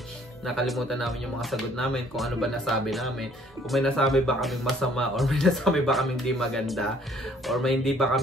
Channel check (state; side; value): normal; both; correlation 0.60